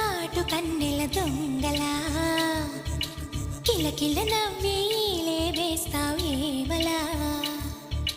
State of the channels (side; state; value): both; identical; correlation 1.00